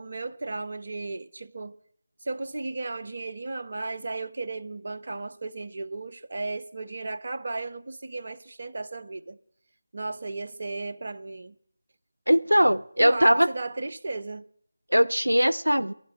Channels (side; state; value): both; inverted; correlation -0.99